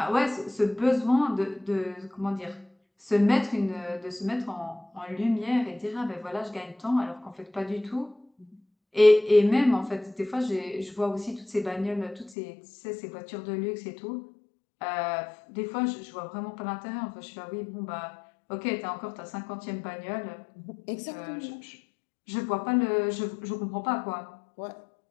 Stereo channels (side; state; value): right; drops out; at 12.4 s